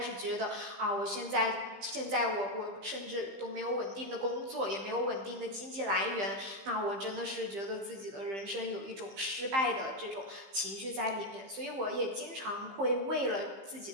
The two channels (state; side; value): late; left; 15 ms